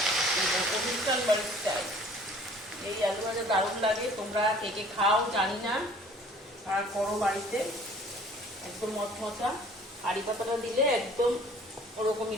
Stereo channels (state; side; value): normal; both; correlation 0.52